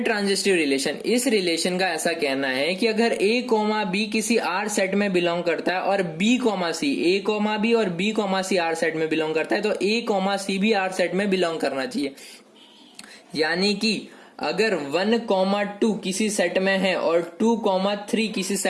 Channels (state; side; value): identical; both; correlation 1.00